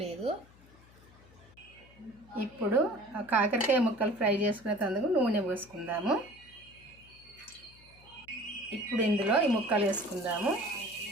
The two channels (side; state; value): left; noise; hum, 25 dB below the sound